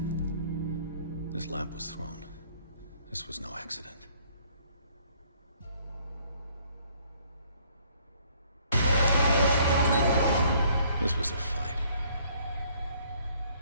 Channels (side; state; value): both; inverted; correlation -0.62